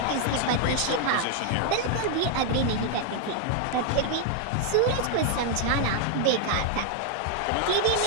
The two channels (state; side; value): different; both; correlation 0.00